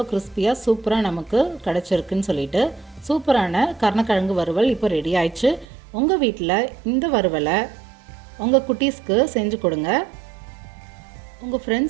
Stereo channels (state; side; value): drops out; left; at 5.7 s